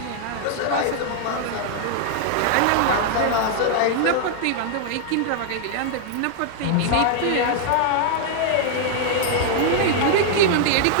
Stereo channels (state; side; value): different; both; correlation 0.00